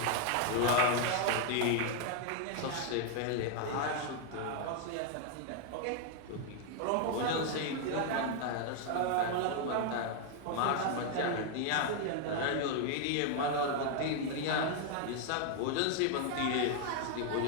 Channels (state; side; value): different; both; correlation 0.01